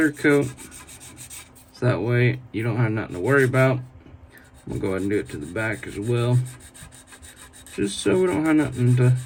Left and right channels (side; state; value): both; identical; correlation 1.00